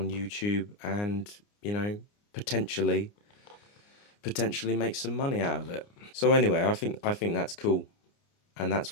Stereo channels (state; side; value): late; right; 29 ms